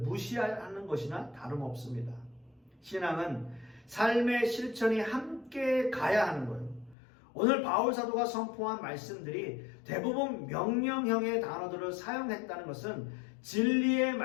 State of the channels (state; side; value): drops out; right; at 7.0 s